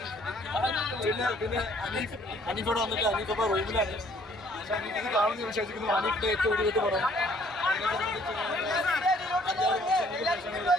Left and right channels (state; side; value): normal; both; correlation 0.61